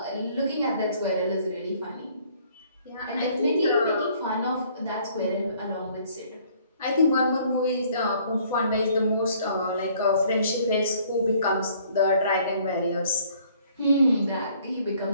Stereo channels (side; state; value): both; inverted; correlation -0.60